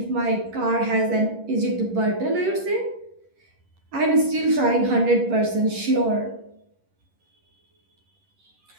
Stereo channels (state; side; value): late; left; 11 ms